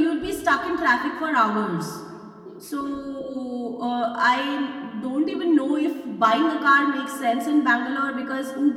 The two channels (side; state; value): both; identical; correlation 1.00